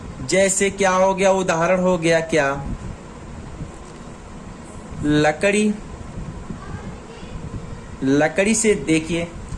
जैसे क्या हो गया, उदाहरण हो गया क्या, लकड़ी, लकड़ी से देखिए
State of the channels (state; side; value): identical; both; correlation 1.00